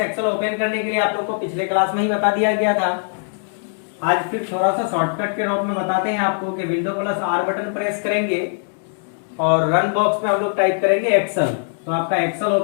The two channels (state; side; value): silent; right; digital silence